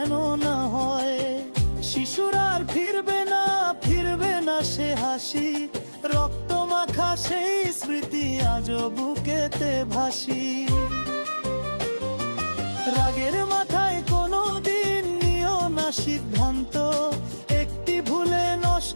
না হয়। শিশুর আর ফিরবে না সে হাসি, রক্ত মাখা সেই স্মৃতি আজও বুকেতে ভাসি। রাগের মাথায় কোনো দিন নিও না সিদ্ধান্ত, একটি ভুলে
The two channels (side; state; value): both; inverted; correlation -1.00